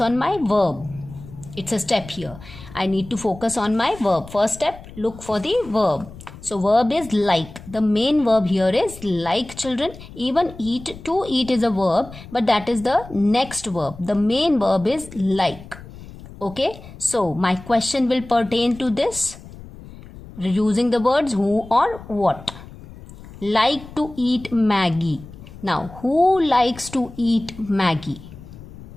my verb. It's a step here. I need to focus on my verb. First step, look for the verb. So verb is like. The main verb here is like, children. Even eat, to eat is a verb, but that is the next verb. The main verb is like. Okay, so my question will pertain to this using the words who or what. Like to eat Maggi. Now, who likes to eat Maggi?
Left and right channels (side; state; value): left; noise; rumble, 17 dB below the sound